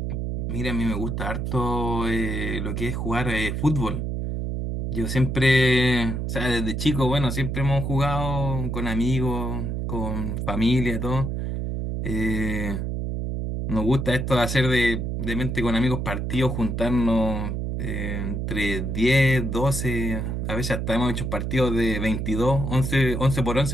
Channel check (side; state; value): right; noise; hum, 2 dB below the sound